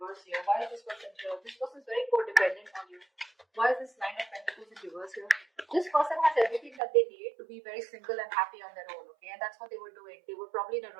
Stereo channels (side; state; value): left; drops out; at 6.8 s